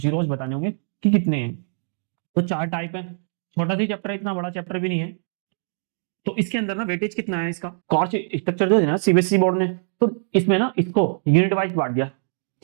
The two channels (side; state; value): left; silent; digital silence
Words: बताने होंगे कि कितने हैं। तो चार टाइप है। छोटा सा चैप्टर है, इतना बड़ा चैप्टर भी नहीं है। तो इसके अंदर ना वेटेज कितना है इसका, कॉस्ट स्ट्रक्चर जो है ना सीबीएसई बोर्ड ने, तो इसमें ना इसको यूनिट वाइज बांट दिया